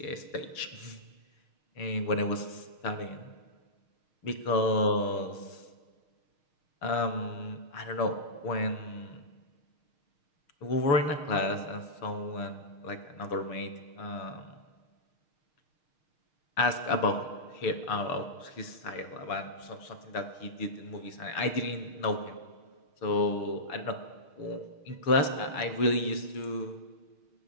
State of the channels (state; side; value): late; right; 6.5 ms